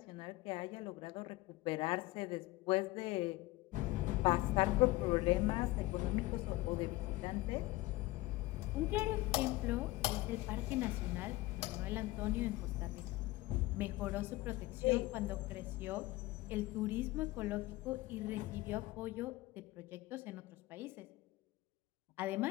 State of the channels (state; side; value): quieter; right; 19.4 dB